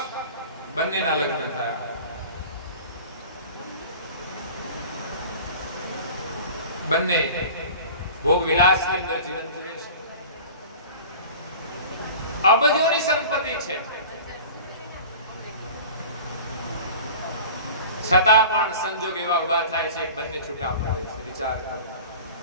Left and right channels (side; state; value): both; inverted; correlation -0.40